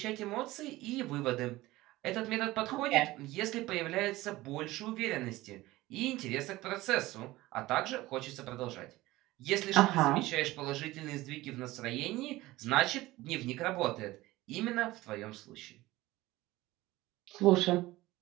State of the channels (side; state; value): left; quieter; 18.3 dB